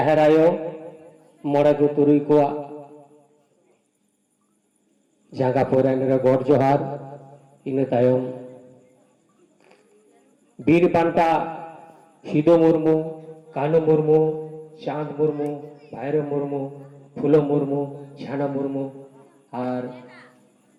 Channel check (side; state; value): both; identical; correlation 1.00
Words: মরাগু তুরুই কোয়া জাগা পরাইনরে গড় জোহার ইনে তায়ম বীর পান্তা সিধু মুর্মু কানু মুর্মু চাঁদ মুর্মু ভাইরো মুর্মু ফুলো মুর্মু ঝানা মুর্মু আর